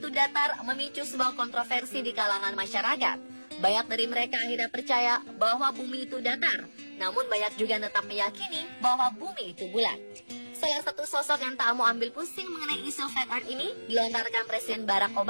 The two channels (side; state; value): both; inverted; correlation -1.00